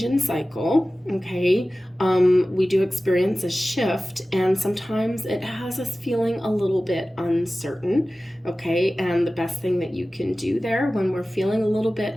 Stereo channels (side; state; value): both; normal; correlation 0.96